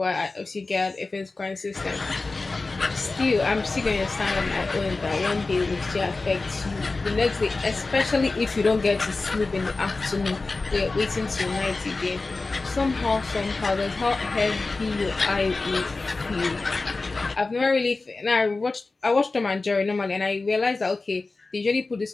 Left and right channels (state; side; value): quieter; right; 3.6 dB